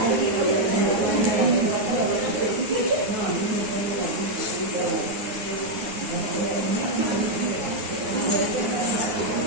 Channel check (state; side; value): late; left; 9.7 ms